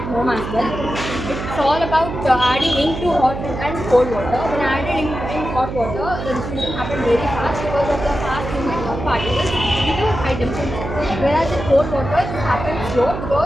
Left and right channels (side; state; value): right; noise; hum, 7 dB below the sound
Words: home as well. It's all about adding ink to hot and cold water. When I added ink in hot water, the diffusion happened very fast because of the fast movement of particles due to high temperature. Whereas in cold water, it happens slow